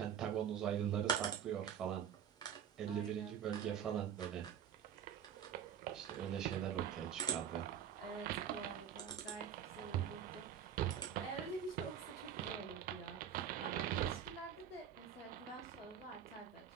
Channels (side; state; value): left; quieter; 8.9 dB